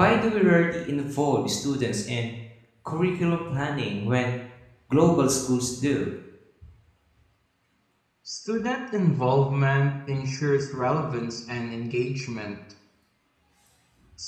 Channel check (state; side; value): identical; both; correlation 1.00